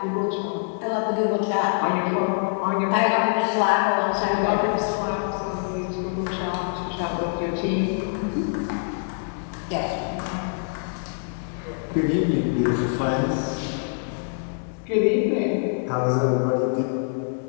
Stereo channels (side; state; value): right; silent; digital silence